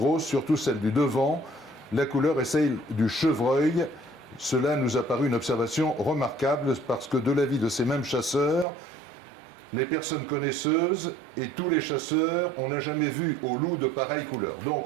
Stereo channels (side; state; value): left; drops out; at 8.7 s